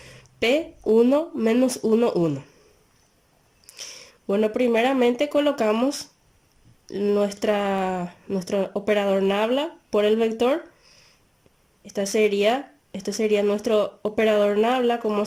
P1 menos 1, 1. Bueno, primeramente colocamos nuestro operador nabla por el vector. Este sería nuestro operador nabla, como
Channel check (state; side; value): identical; both; correlation 1.00